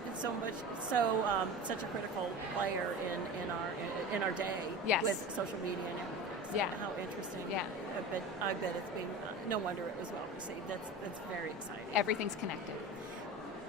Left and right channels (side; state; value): both; normal; correlation 0.31